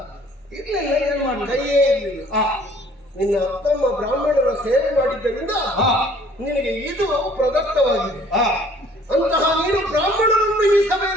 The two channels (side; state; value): both; normal; correlation 0.56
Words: ಇರ್ಲಿಲ್ಲ, ಏನ್ ಮಾಡಿ ಕೈಯೇ ಇರಲಿಲ್ಲ. ನಿನ್ನ ಅಪ್ಪಮ್ಮ ಬ್ರಾಹ್ಮಣರ ಸೇವೆ ಮಾಡಿದ್ದರಿಂದ ನಿನಗೆ ಇದು ಪ್ರದತ್ತವಾಗಿದೆ. ಅಂತಹ ನೀನು ಬ್ರಾಹ್ಮಣರನ್ನು ಈ